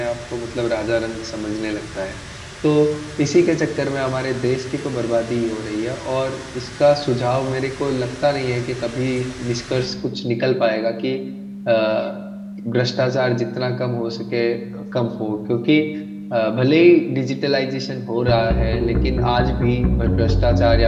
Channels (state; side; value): identical; both; correlation 1.00